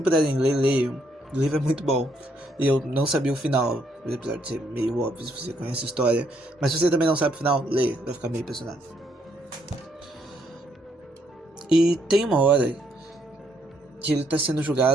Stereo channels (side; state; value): both; normal; correlation 0.72